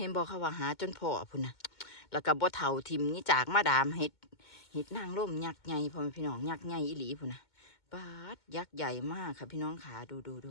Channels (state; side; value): late; right; 2.2 ms